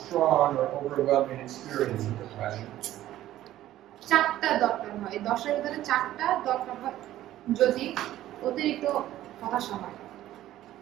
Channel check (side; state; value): left; quieter; 13.8 dB